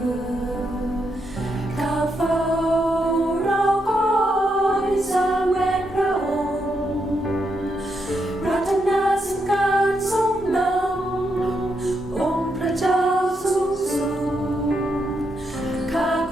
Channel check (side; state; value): both; normal; correlation 0.81